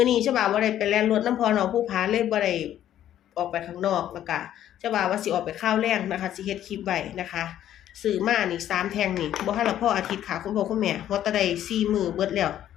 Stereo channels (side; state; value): right; quieter; 11.5 dB